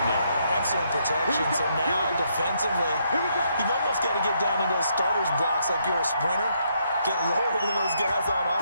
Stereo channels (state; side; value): inverted; both; correlation -0.75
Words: there. Excellent protection. So now, defensively, you've almost got to get down in those starters blocks like you're a sprinter. Get lower than those guys on